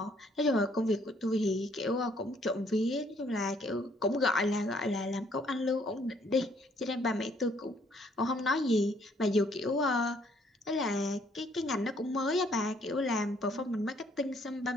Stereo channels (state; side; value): normal; both; correlation 0.65